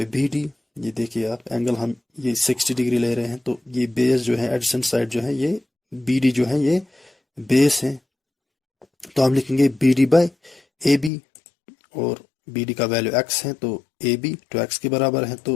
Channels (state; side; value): drops out; right; at 11.1 s